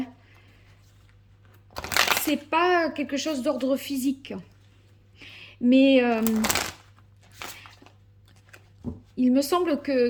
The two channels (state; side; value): identical; both; correlation 1.00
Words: C'est pas quelque chose d'ordre physique. Mais il me semble